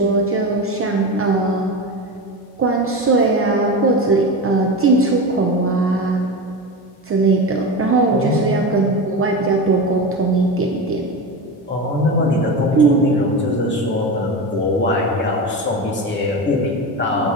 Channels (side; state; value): both; normal; correlation 0.22